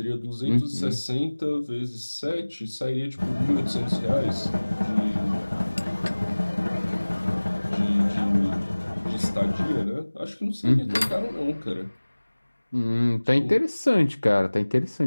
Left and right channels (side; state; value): both; inverted; correlation -1.00